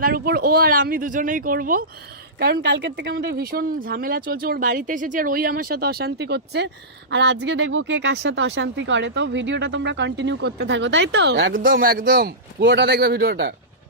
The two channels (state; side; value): normal; both; correlation -0.18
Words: উপর। ও আর আমি দুজনেই করব, কারণ কালকের থেকে আমাদের ভীষণ ঝামেলা চলছে। ওর বাড়িতে এসেছি আর ওই আমার সাথে অশান্তি করছে, আর আজকে দেখবো কে কার সাথে অশান্তি করে। তো ভিডিওটা তোমরা কন্টিনিউ করতে থাকো, তাই তো? একদম একদম পুরোটা দেখবে ভিডিওটা।